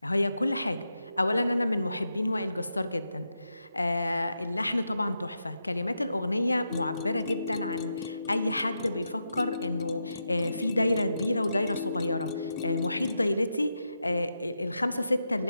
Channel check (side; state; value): both; inverted; correlation -0.86